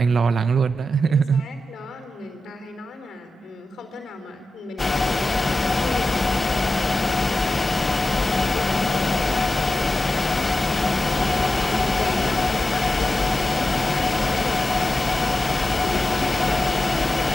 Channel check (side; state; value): both; normal; correlation 0.92